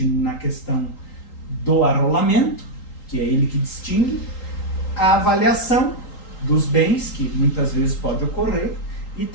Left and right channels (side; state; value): right; late; 3.8 ms